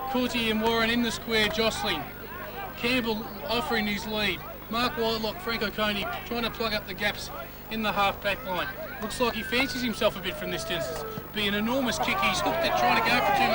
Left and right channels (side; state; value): both; identical; correlation 1.00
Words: Cooley and Warren in the square jostling. Campbell offering his lead. Mark Whitelock, Frank O'Coney trying to plug up the gaps in the half-back line. Looks like he fancies himself a bit from this distance. Be an enormous kick. He's hooked it, trying to go for too